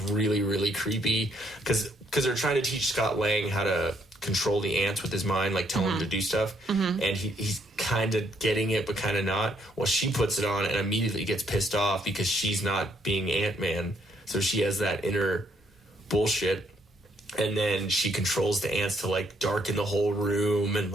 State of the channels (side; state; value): both; normal; correlation 0.70